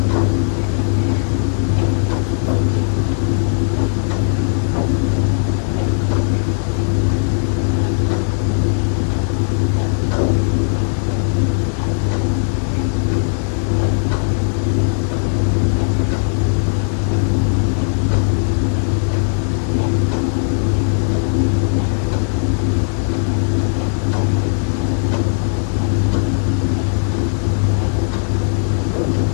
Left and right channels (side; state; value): right; silent; 61 dB below the other